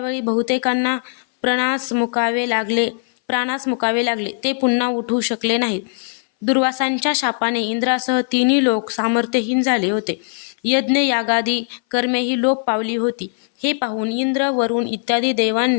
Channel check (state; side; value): silent; right; 62 dB below the other